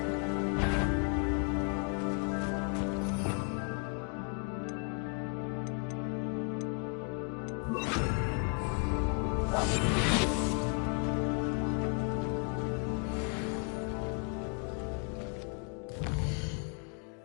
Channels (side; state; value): right; quieter; 37.9 dB